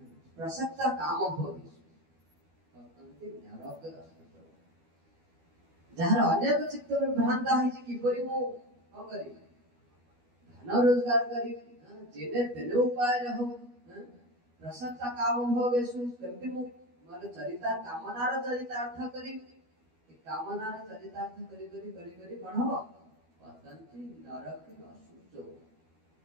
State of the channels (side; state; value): left; late; 12 ms